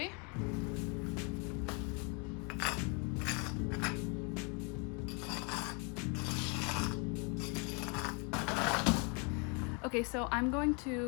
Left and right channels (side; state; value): right; quieter; 34.4 dB